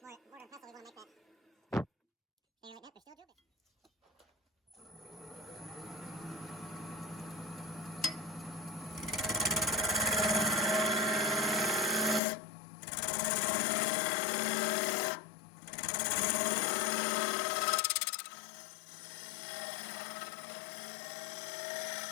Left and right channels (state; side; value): drops out; right; at 12.2 s